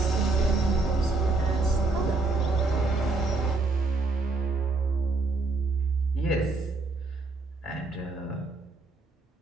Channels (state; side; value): quieter; left; 3.6 dB